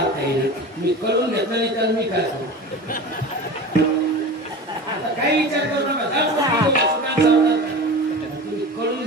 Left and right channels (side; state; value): both; normal; correlation 0.33